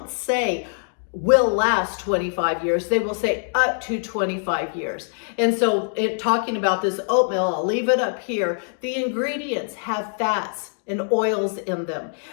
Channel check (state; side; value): silent; right; digital silence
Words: say will last 25 years. They will say up to 25 years. And so talking about this oatmeal, I'll leave it up here. The ingredients have fats and oils in them.